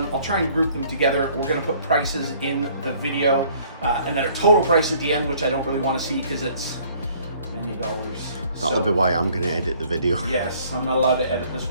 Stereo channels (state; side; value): inverted; both; correlation -0.58